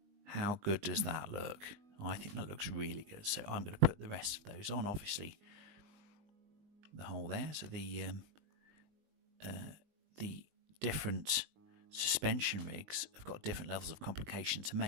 How good does that look? I think that looks really good. So I'm going to put the rest of those on. Obviously, the hole there. So the different suspension rigs have got different levels of complication to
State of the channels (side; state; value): left; late; 20 ms